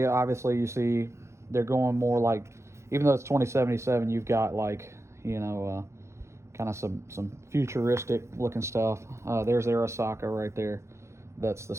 obviously you see they're going more like, even though it's 2077, you've got like kind of some futuristic looking stuff. There's Arasaka right there. That's the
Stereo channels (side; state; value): left; late; 0.13 ms